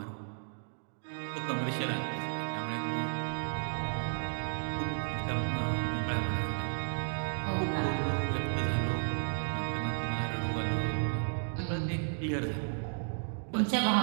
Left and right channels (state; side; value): silent; left; digital silence